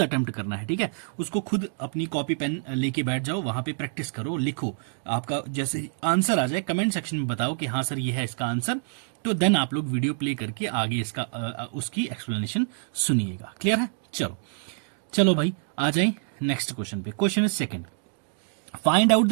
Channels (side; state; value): left; silent; digital silence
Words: अटेम्प्ट करना है। ठीक है, उसको खुद अपनी कॉपी पेन लेके बैठ जाओ, वहां पे प्रैक्टिस करो, लिखो। आपका जैसे आंसर आ जाए कमेंट सेक्शन में बताओ कि हाँ सर ये है इसका आंसर, तो देन आप लोग वीडियो प्ले करके आगे इसका उसकी एक्सप्लेनेशन सुनिएगा। क्लियर है। चलो चलो भाई आ जाए नेक्स्ट क्वेश्चन पे। Question is second, find out